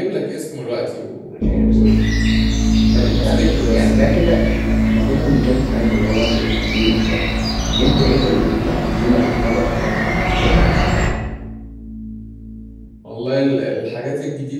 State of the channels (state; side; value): identical; both; correlation 1.00